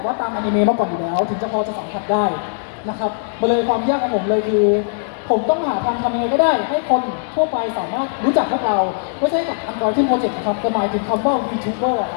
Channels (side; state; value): right; silent; 66 dB below the other